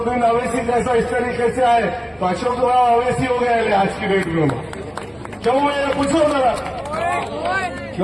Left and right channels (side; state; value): both; identical; correlation 1.00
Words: अवैसी जैसा इस तरीके से आए तो अशोक राव अवैसी हो गए आज की डेट में। क्यों मैं पूछो जरा,